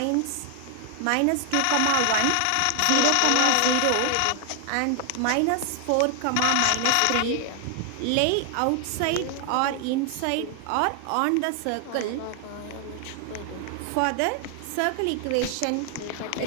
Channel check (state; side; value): different; both; correlation 0.00